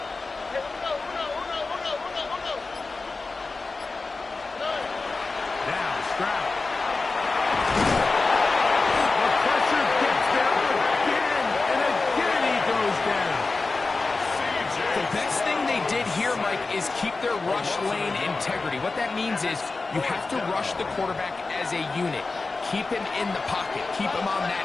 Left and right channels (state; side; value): quieter; right; 3.8 dB